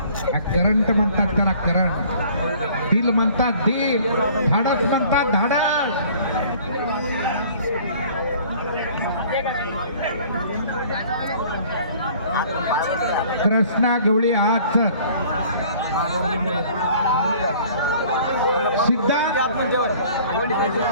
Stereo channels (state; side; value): inverted; both; correlation -0.52